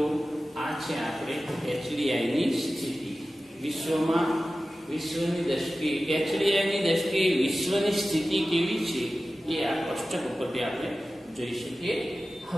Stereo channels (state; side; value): normal; both; correlation 0.95